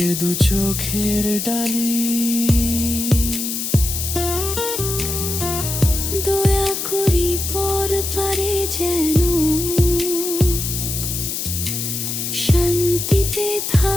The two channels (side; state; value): left; noise; hiss, 3 dB below the sound